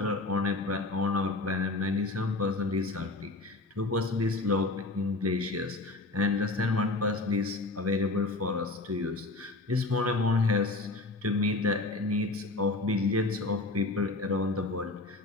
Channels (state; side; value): quieter; right; 3.1 dB